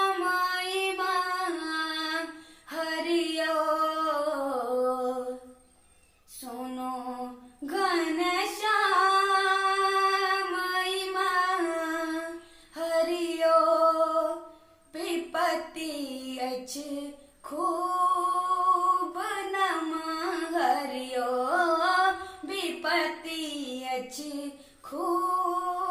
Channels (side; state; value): both; identical; correlation 1.00